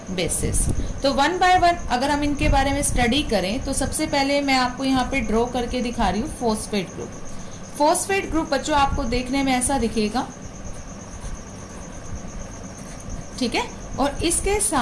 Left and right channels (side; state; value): both; identical; correlation 1.00